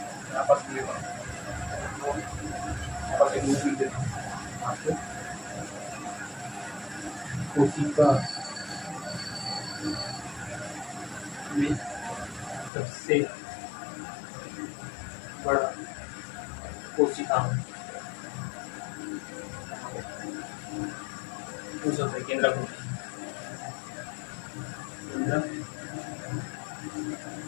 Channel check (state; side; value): drops out; right; at 12.7 s